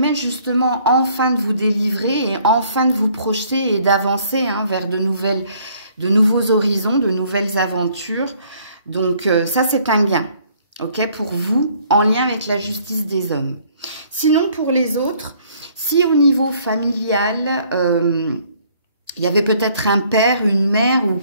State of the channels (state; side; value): inverted; both; correlation -0.62